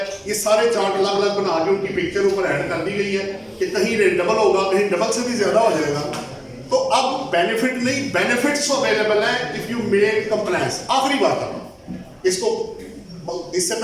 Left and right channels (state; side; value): identical; both; correlation 1.00